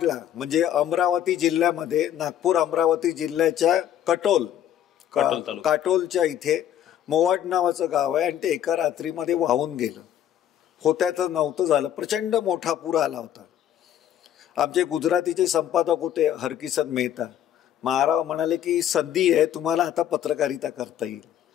म्हणजे अमरावती जिल्ह्यामध्ये, नागपूर अमरावती जिल्ह्याच्या काटोलच्या इथे मोवाड नावाचं गाव आहे. आणि ते एका रात्रीमध्ये वाहून गेलं. होत्याचं नव्हतं झालं. प्रचंड मोठा पूर आला होता. आमचे गुजरातीचे संपादक होते हरकिशन मेहता. महाराव म्हणाले की संधी आहे, तुम्हाला आता पत्रकारिता करता येईल.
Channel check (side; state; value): right; quieter; 10.8 dB